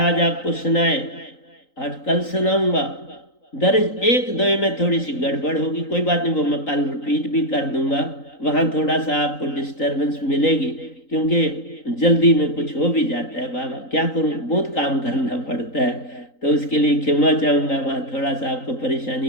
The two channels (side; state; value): right; late; 3.9 ms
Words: आपको सुनाए, 8 कल सुनाऊंगा। दर्ज एक दो में थोड़ी सी गड़बड़ होगी, कोई बात नहीं, वो मैं कल रिपीट भी कर दूंगा। वहाँ थोड़ा सा आपको डिस्टर्बेंस मिलेगी क्योंकि जल्दी में कुछ हो भी जाता है। बाबा क्या करूँ, बहुत काम करना पड़ता है, तो उसके लिए क्षमा चाहूँगा। वहाँ थोड़ा सा आपको